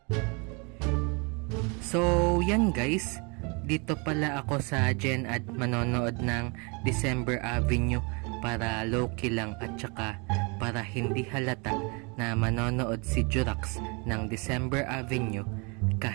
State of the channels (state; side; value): quieter; left; 31.5 dB